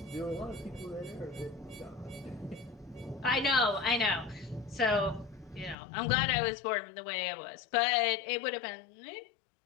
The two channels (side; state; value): right; drops out; at 5.8 s